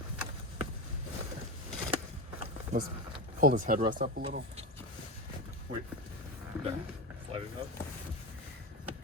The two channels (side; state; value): both; normal; correlation 0.19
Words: let's pull this headrest up a little. Wait. There. Slide it up.